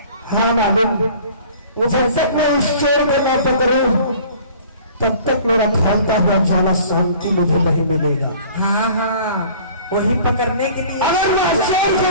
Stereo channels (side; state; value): both; inverted; correlation -0.49